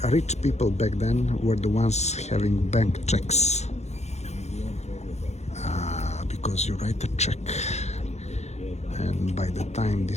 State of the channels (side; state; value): right; late; 0.32 ms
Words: Rich people back then were the ones having bank checks. Because you write a check, and by the time